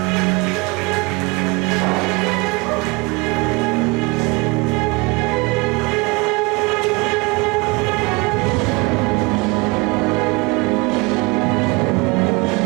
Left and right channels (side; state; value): left; quieter; 26.7 dB